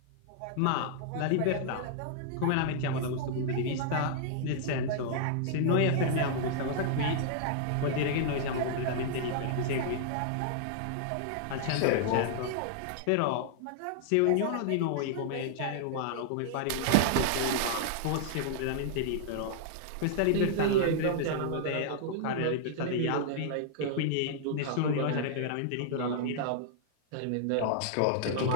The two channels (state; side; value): different; both; correlation -0.01